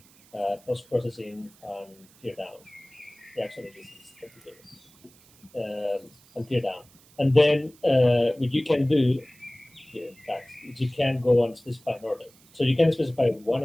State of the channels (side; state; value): right; noise; hiss, 27 dB below the sound